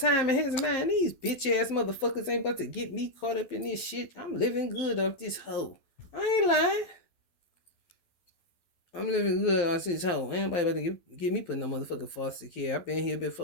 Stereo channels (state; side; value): late; right; 12 ms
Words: in his mind, these bitch ass motherfuckers ain't about to get me caught up in this shit. I'm living good off this hoe. I ain't lying. I'm living good off this hoe. Ain't nobody about to get me putting no motherfucking foster care. I've been here